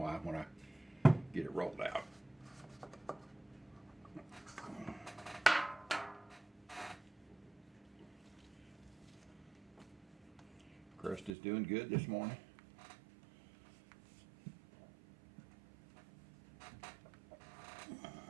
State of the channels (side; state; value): left; drops out; at 11.3 s